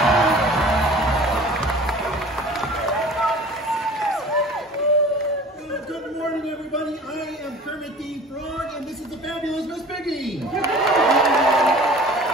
Good morning, everybody. I am Kermit the Frog, and this is the fabulous Miss Piggy.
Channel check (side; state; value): both; normal; correlation 0.45